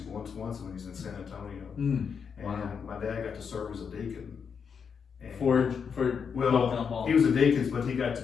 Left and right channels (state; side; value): quieter; right; 6.5 dB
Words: once when he was in San Antonio. Mm. And Wow. my dad got to serve as a deacon. And For well, Paul. he was a deacon, but he got to